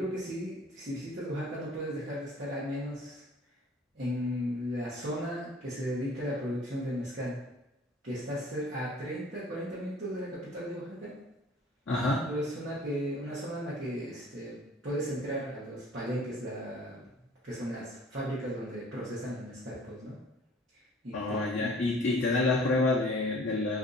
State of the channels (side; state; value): both; normal; correlation 0.51